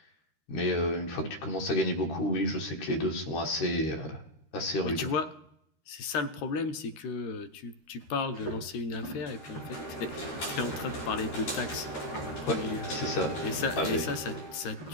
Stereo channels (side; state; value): right; late; 13 ms